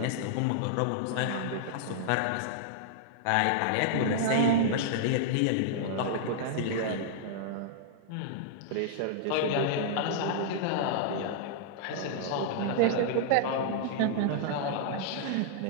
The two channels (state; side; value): different; both; correlation -0.01